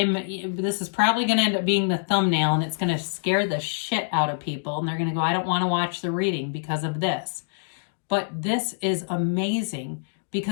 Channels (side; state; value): right; silent; digital silence